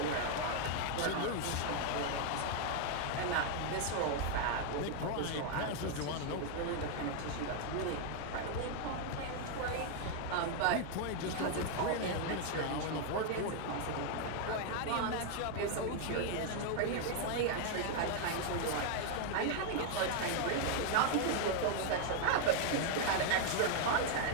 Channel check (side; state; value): both; different; correlation 0.00